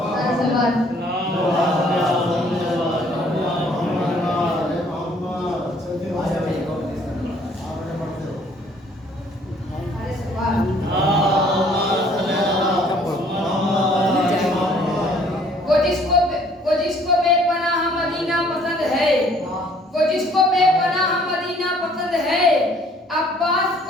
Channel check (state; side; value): normal; both; correlation 0.60